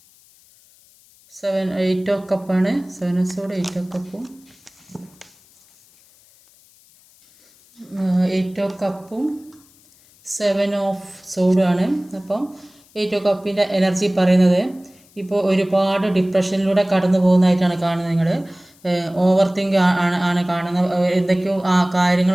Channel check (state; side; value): noise; left; hiss, 29 dB below the sound